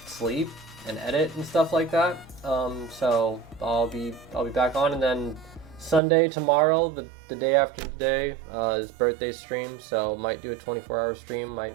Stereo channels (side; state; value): left; drops out; at 6.0 s